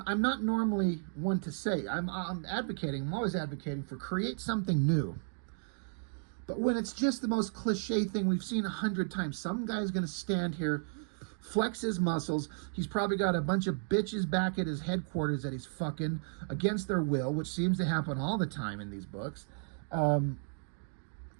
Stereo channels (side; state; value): left; silent; digital silence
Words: I'm not normally one to say. I'm always advocating for create something new. But when it's just the most cliche thing we've seen 100 times, some guy's going to stand here, flex his muscles. He's probably got a bunch of bitches back at his headquarters that he's fucking against their will, which seems to happen all the time in these books. And